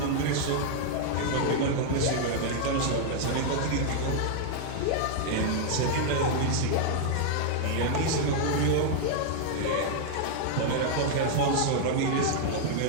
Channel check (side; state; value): both; different; correlation -0.01